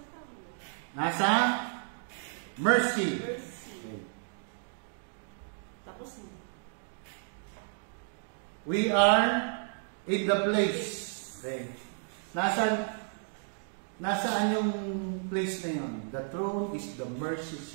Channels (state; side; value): silent; left; digital silence